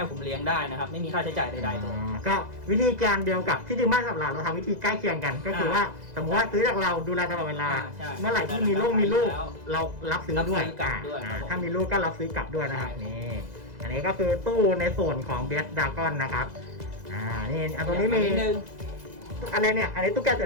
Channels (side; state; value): left; late; 2.0 ms